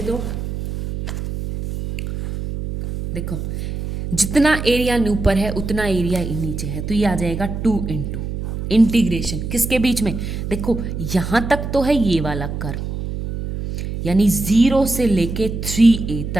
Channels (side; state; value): right; noise; hum, 5 dB below the sound